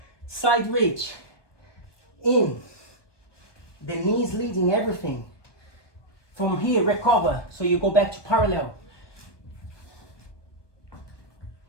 Side reach, in, the knees leading everything. From here, recover, so you go back to parallel.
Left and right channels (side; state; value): right; late; 1.2 ms